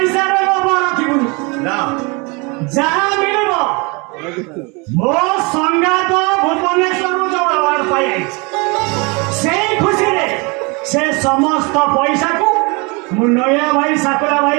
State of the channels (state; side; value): quieter; left; 29.2 dB